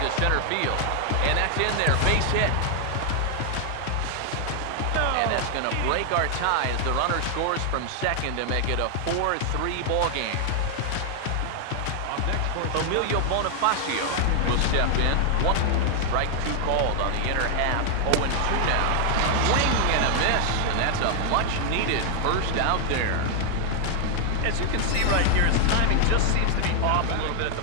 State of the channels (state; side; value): different; both; correlation 0.00